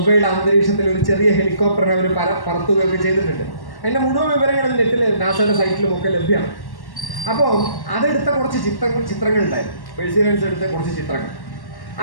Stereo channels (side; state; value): right; late; 1.1 ms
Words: അന്തരീക്ഷത്തിൽ ഒരു ചെറിയ ഹെലികോപ്റ്ററിനെ അവർ പറത്തുകയൊക്കെ ചെയ്തിട്ടുണ്ട്. അതിൻ്റെ മുഴുവൻ വിവരങ്ങൾ നെറ്റിൽ നാസയുടെ സൈറ്റിലും ഒക്കെ ലഭ്യമാണ്. അപ്പോൾ അതെടുത്ത കുറച്ച് ചിത്രങ്ങൾ ഉണ്ടായിരുന്നു. പേഴ്സിറിയൻസ് എടുത്ത കുറച്ച് ചിത്രങ്ങൾ.